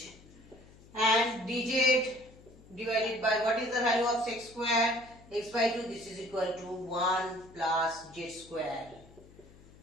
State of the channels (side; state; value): left; noise; hum, 23 dB below the sound